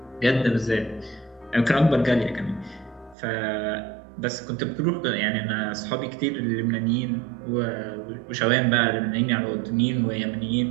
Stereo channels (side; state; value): left; drops out; at 3.2 s